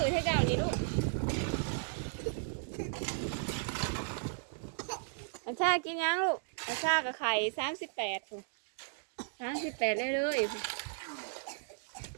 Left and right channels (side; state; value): left; silent; digital silence